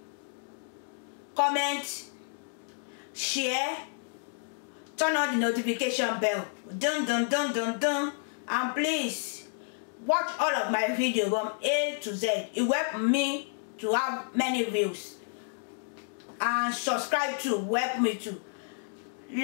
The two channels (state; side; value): silent; right; digital silence